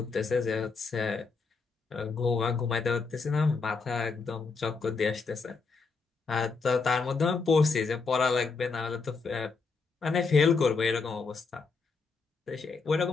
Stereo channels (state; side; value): quieter; right; 4.5 dB